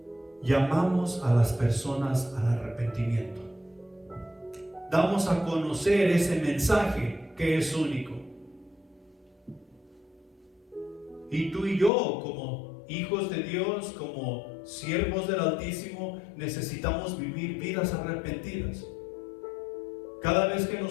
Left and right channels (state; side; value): drops out; right; at 11.9 s